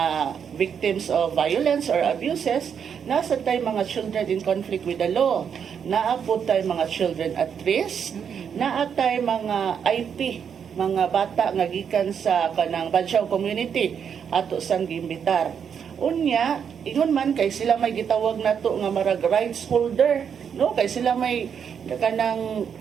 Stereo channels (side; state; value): left; quieter; 7.5 dB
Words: victims of violence or abuses, nasa tay mga children in conflict with the law, naapod tay mga children at risk, naatay mga IP, mga bata nga gikan sa kanang Badyaw community ato sang giimbitar. Unya, ingon man kay sila may gitawag nato nga marag rights holder, no? Kay sila may kanang